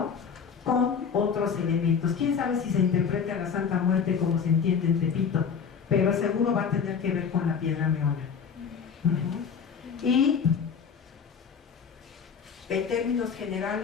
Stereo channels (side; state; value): right; quieter; 6.6 dB